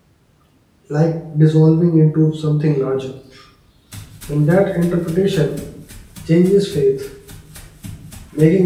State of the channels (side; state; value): both; identical; correlation 1.00